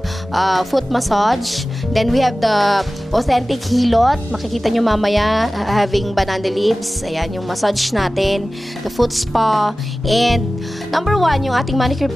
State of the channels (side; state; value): both; normal; correlation 0.96